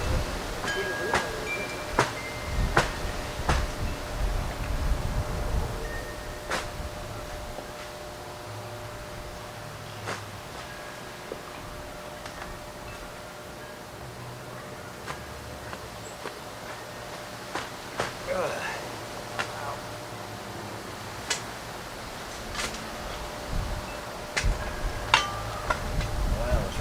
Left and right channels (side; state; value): both; identical; correlation 1.00